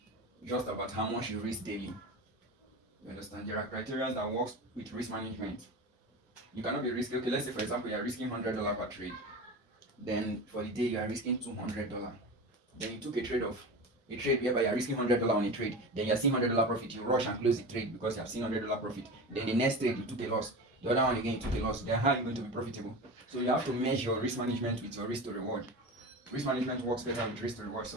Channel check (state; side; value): normal; both; correlation 0.28